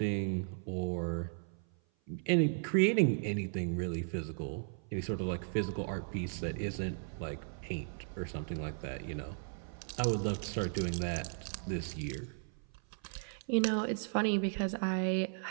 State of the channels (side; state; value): left; silent; 54 dB below the other